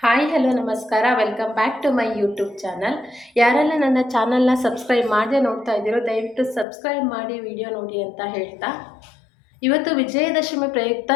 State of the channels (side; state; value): right; drops out; at 6.7 s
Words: Hi hello ನಮಸ್ಕಾರ, welcome back to my YouTube channel. ಯಾರೆಲ್ಲ ನನ್ನ ಚಾನಲ್ನ ಸಬ್ಸ್ಕ್ರೈಬ್ ಮಾಡದೆ ನೋಡ್ತಾ ಇದ್ದೀರೋ ದಯವಿಟ್ಟು ಸಬ್ಸ್ಕ್ರೈಬ್ ಮಾಡಿ ವಿಡಿಯೋ ನೋಡಿ ಅಂತ ಹೇಳ್ತಾ, ಇವತ್ತು ವಿಜಯದಶಮಿ ಪ್ರಯುಕ್ತ